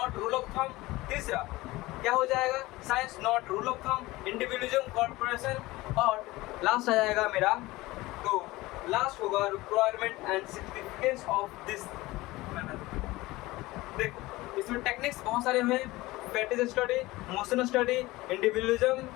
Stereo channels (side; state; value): right; quieter; 19.7 dB